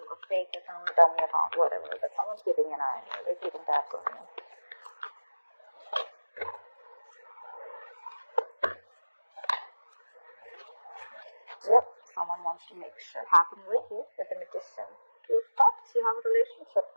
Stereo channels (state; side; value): inverted; both; correlation -1.00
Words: a fake account, dummy account, whatever. But someone's keeping an eye on you. They're keeping tabs on you. Yep, someone wants to make shit happen with you, with the magician. Two cups, you have a relationship